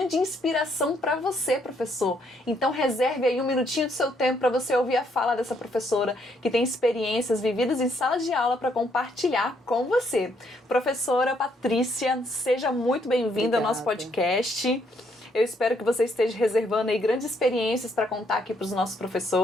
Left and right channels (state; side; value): normal; both; correlation 0.71